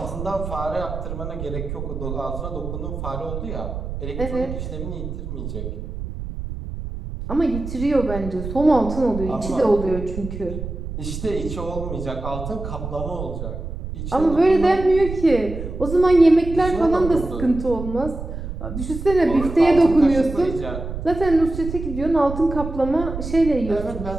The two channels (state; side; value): noise; right; rumble, 7 dB below the sound